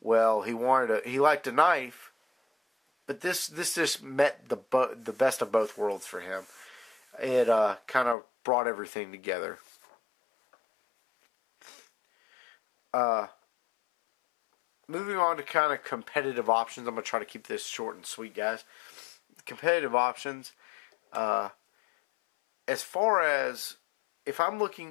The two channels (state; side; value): drops out; right; at 8.2 s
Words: he liked a knife, but this just met the best of both worlds for him. It kind of brought everything together. Moving on to kind of competitive options. I'm going to try to keep this short and sweet, guys. Competitive options. As far as if I'm